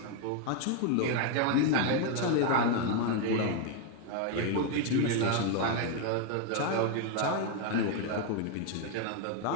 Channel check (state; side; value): different; both; correlation 0.01